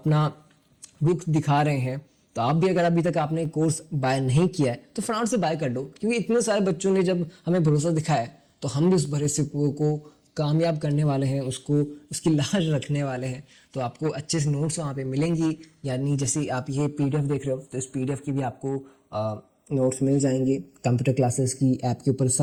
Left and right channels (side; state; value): both; identical; correlation 1.00